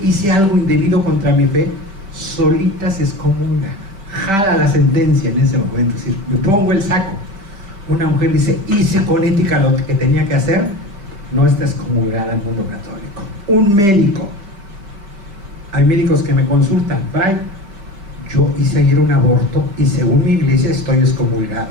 hice algo indebido contra mi fe, solita se excomulga, jala la sentencia en ese momento, es decir, me pongo el saco. Una mujer dice, hice con ética lo que tenía que hacer, no está excomulgada en el mundo católico. Un médico, hay médicos que me consultan, Fray, yo hice ayer un aborto y según mi iglesia estoy excomulgada.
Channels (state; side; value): late; left; 5.1 ms